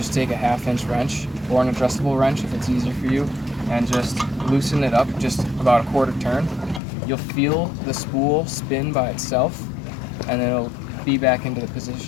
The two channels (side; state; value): right; drops out; at 6.8 s